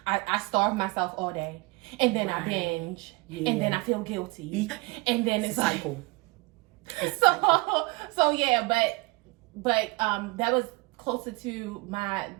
I starve myself all day, and then I binge, and then I feel guilty, and then it's cycle. So yeah, but that was closer to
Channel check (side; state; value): left; quieter; 24.7 dB